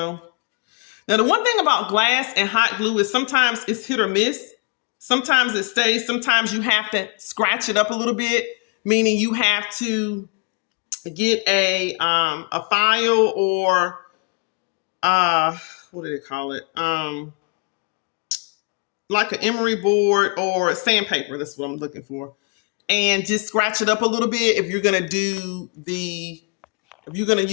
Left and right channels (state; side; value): quieter; right; 34.6 dB